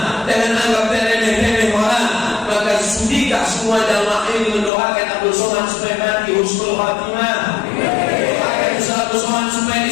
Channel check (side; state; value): right; drops out; at 4.7 s